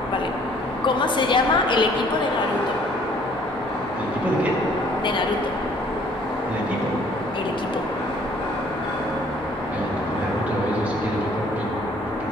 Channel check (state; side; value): normal; both; correlation 0.58